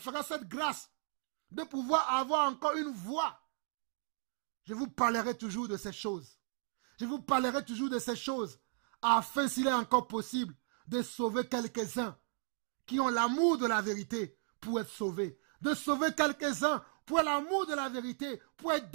cette grâce de pouvoir avoir encore une voix, je vous parlerai toujours de ces choses. Je vous parlerai toujours de ces choses afin, s'il est encore possible, de sauver quelques-uns qui ont l'amour de la vérité pour être sauvés. De sauver quelques-uns pour l'amour de la vérité, pour être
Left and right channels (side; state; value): left; silent; 54 dB below the other